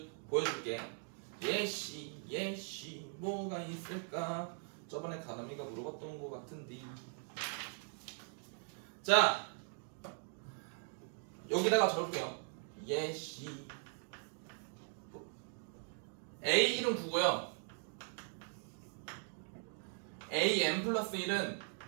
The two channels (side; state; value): left; silent; 51 dB below the other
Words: 보여줄게. 예시 뭐가 있을까? 저번에 가람이가 물어봤던 것 같은데. 자, 여기다가 적을게요. 예시 A1은 9고요 AN 플러스 1은